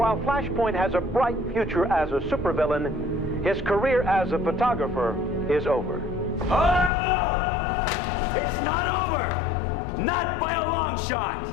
Flashpoint has a bright future as a supervillain, his career as a photographer is over. Oh! It's not over! Not by a long shot!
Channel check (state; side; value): drops out; right; at 6.9 s